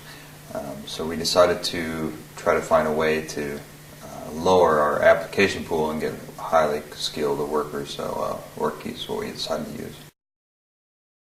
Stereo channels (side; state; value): both; identical; correlation 1.00